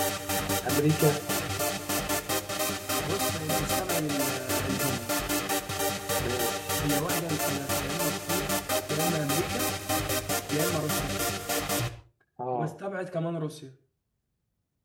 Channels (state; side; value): identical; both; correlation 1.00